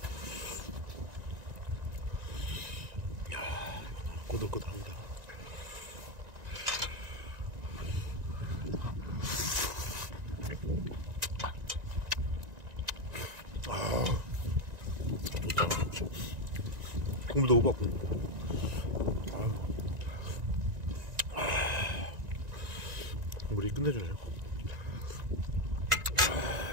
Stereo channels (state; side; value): late; left; 1.9 ms